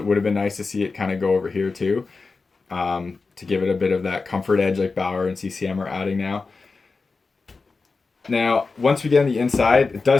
would have been nice to see it kind of go over here too, to give it a bit of that comfort edge like Bauer and CCM are adding now. Now, once we get on the inside, it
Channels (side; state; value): right; quieter; 4.2 dB